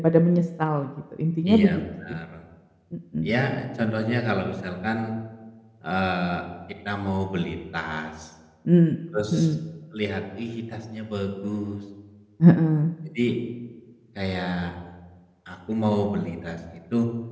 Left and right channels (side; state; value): both; identical; correlation 1.00